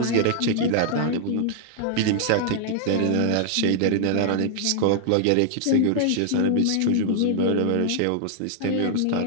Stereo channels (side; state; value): both; different; correlation -0.01